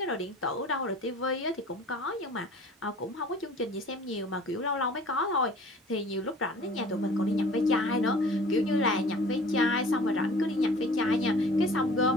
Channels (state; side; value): normal; both; correlation 0.47